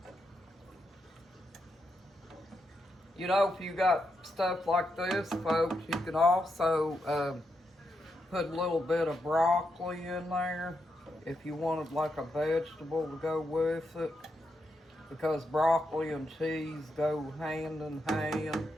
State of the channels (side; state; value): both; normal; correlation 0.83